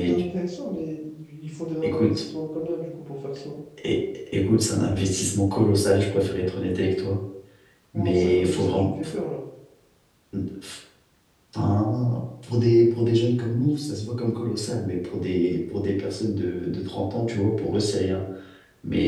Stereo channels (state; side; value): identical; both; correlation 1.00